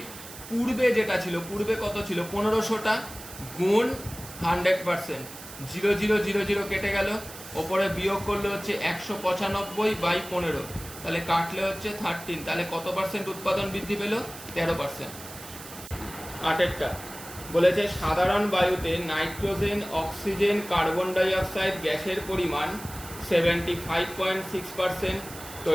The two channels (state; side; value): noise; right; hiss, 14 dB below the sound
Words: পূর্বে যেটা ছিল, পূর্বে কত ছিল 1500টা, গুণ 100%, 0 0 0 0 কেটে গেল, ওপরে বিয়োগ করলে হচ্ছে 195/15, তাহলে কাটলে হচ্ছে 13। তাহলে কত পার্সেন্ট উৎপাদন বৃদ্ধি পেল, 13%। 8 বলেছে সাধারণ বায়ুতে nitrogen, oxygen, carbon die oxide গ্যাসের পরিমাণ 75.6%,